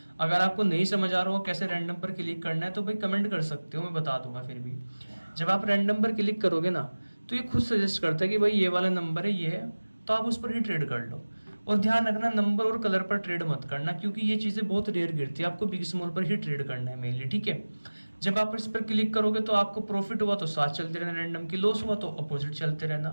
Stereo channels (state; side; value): inverted; both; correlation -1.00